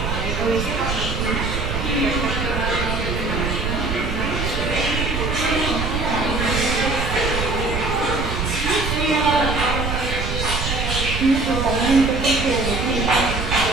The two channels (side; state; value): right; noise; rumble, 3 dB below the sound